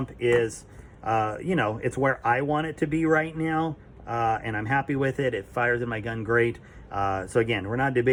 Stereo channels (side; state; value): both; identical; correlation 1.00